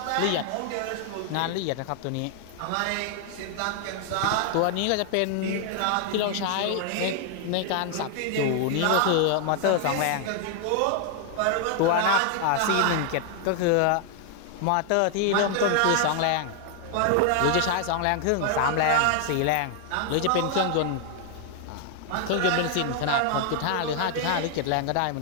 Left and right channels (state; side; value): different; both; correlation 0.00